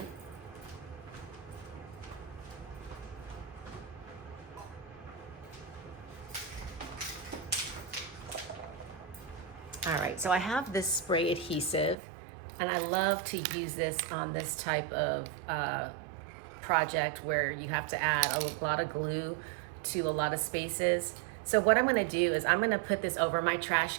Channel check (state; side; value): drops out; left; at 12.0 s